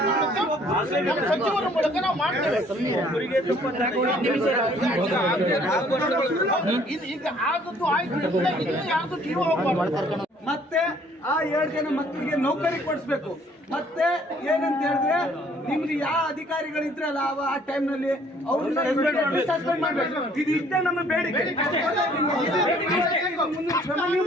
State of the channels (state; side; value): normal; both; correlation 0.59